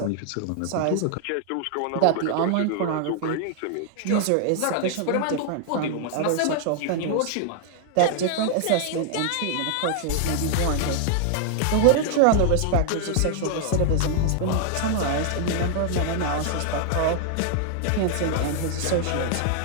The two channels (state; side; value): different; both; correlation 0.00